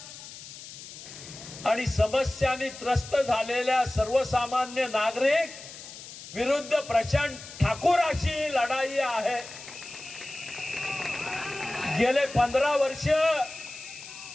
आणि समस्यांनी त्रस्त झालेल्या सर्वसामान्य नागरिक विरुद्ध प्रशांत ठाकूर अशी ही लढाई आहे। गेले 15 वर्ष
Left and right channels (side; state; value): left; noise; hiss, 14 dB below the sound